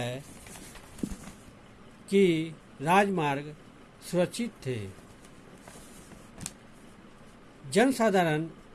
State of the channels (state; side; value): identical; both; correlation 1.00